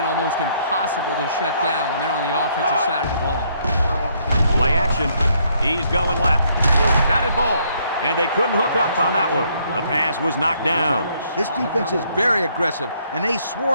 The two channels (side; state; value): both; inverted; correlation -0.69